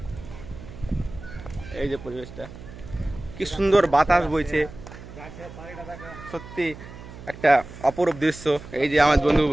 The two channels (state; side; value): noise; right; hum, 15 dB below the sound